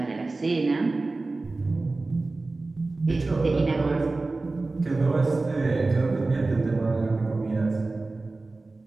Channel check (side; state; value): left; quieter; 3.4 dB